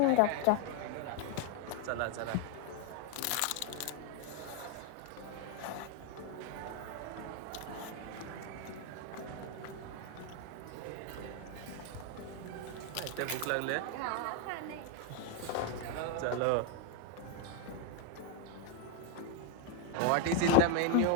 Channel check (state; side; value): different; both; correlation 0.01